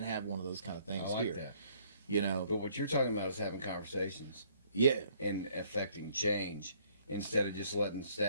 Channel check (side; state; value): both; inverted; correlation -0.62